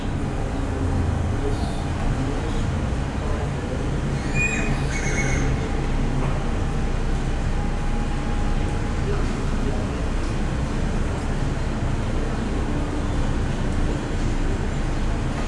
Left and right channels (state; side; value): identical; both; correlation 1.00